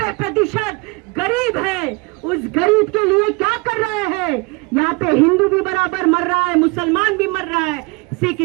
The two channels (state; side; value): quieter; left; 27.6 dB